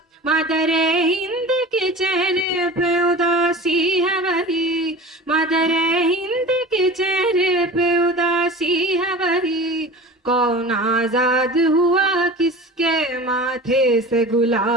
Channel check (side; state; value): both; normal; correlation 0.36